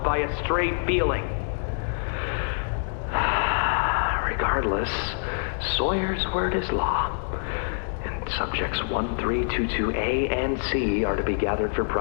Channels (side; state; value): right; silent; digital silence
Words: by a stray feeling. Regardless, Sawyer's word is law, and subjects 1322A and C are to be gathered for